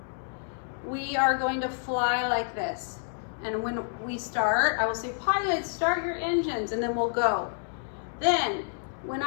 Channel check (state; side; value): silent; right; digital silence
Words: we are going to fly like this. And when we start, I will say, pilots, start your engines, and then we'll go. Then, when